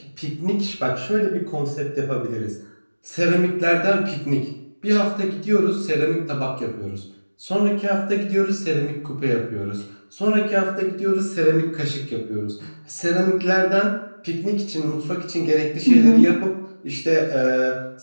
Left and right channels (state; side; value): inverted; both; correlation -1.00